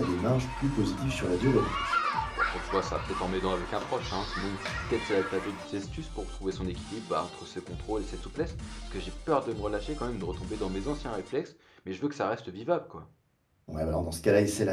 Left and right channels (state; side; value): identical; both; correlation 1.00